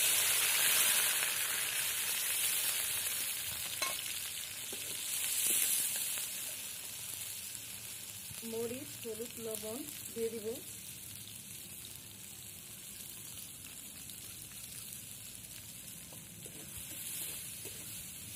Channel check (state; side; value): identical; both; correlation 1.00